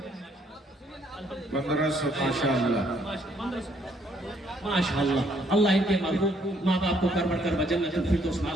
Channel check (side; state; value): both; normal; correlation 0.67